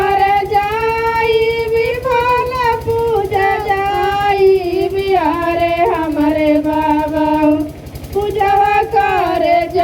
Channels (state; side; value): identical; both; correlation 1.00